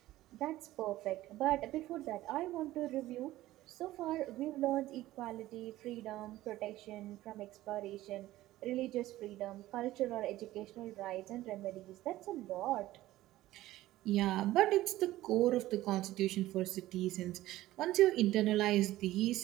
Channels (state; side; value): quieter; left; 15.8 dB